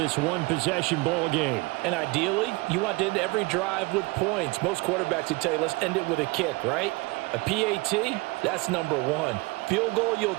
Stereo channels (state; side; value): quieter; left; 24.6 dB